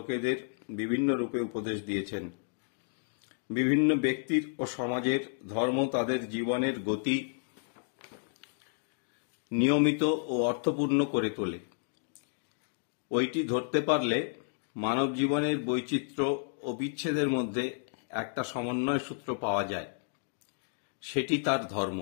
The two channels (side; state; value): right; silent; digital silence